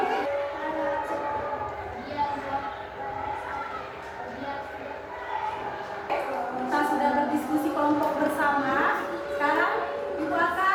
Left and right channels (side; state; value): both; identical; correlation 1.00